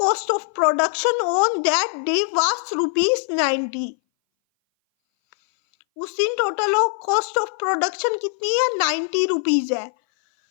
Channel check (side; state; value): right; silent; 60 dB below the other